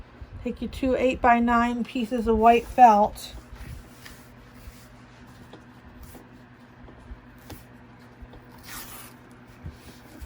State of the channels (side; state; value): both; identical; correlation 1.00